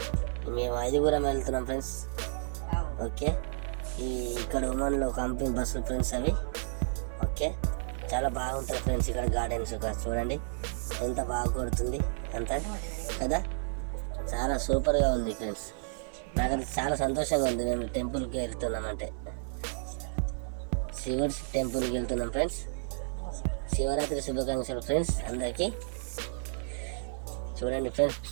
మేము 5 వెళ్తున్నాం ఫ్రెండ్స్. ఓకే, ఇక్కడ ఒమాన్లో కంపెనీ బస్సులు ఫ్రెండ్స్ అవి. ఓకే, చాలా బాగుంటుంది ఫ్రెండ్స్ ఇక్కడ గార్డెన్స్. చూడండి ఎంత బాగా కొడుతుంది అంతా కదా, చాలా సూపర్గా ఉంది ఫ్రెండ్స్. నాకైతే చాలా సంతోషంగా ఉంది. మేము టెంపుల్కి వెళ్తున్నామంటే శివుడి టెంపుల్కి వెళ్తున్నాం ఫ్రెండ్స్. శివరాత్రి శుభాకాంక్షలు ఫ్రెండ్స్ అందరికీ. చూడండి ఫ్రెండ్స్,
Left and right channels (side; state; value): left; silent; 57 dB below the other